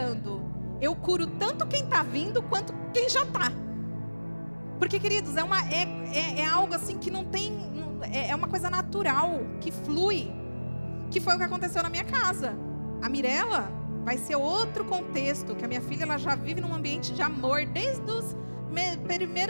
eu curo tanto quem está vindo, quanto quem já está. Porque, queridos, é algo assim que não tem, é uma coisa natural, que flui, que foi o que aconteceu na minha casa. A Mirella vai ser outro contexto, que a minha filha ela já vive num ambiente de amor, desde os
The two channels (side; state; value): both; inverted; correlation -1.00